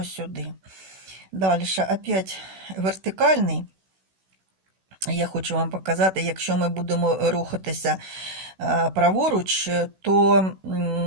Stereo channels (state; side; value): late; left; 16 ms